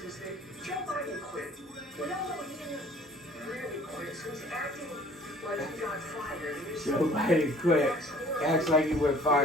is that Joe Biden quit. We all know he didn't really quit, so he's acting like he got fired. Joe Biden quit. Acts like he went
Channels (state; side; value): normal; both; correlation 0.53